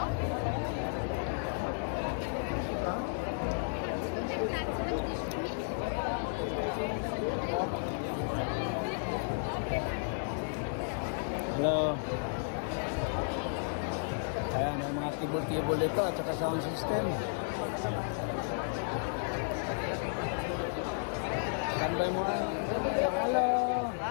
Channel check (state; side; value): silent; right; digital silence